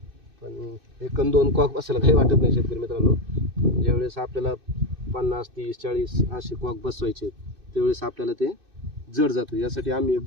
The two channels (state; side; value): late; left; 2.6 ms